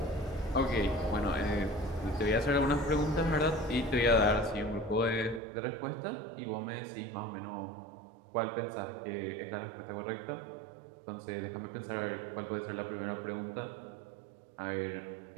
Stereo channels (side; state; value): left; drops out; at 5.4 s